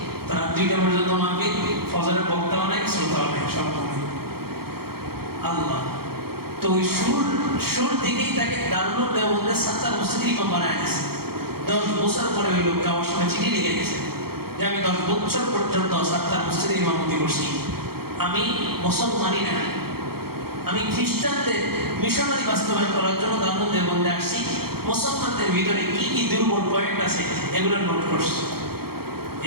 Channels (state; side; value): late; left; 0.95 ms